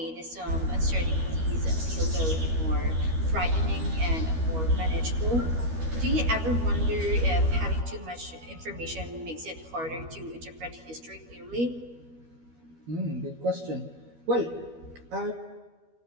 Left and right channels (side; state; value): left; late; 13 ms